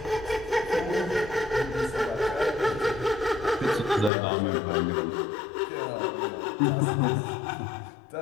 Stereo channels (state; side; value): drops out; right; at 4.1 s